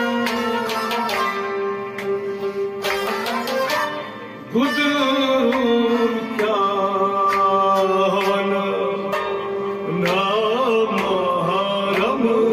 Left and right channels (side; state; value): both; identical; correlation 1.00